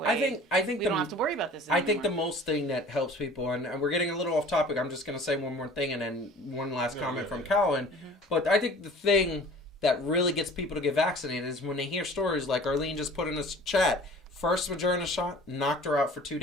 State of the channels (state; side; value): normal; both; correlation 0.46